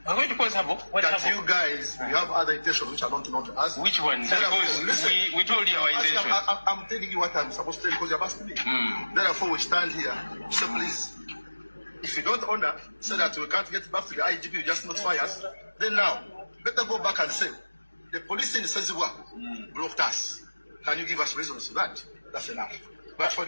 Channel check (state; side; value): inverted; both; correlation -1.00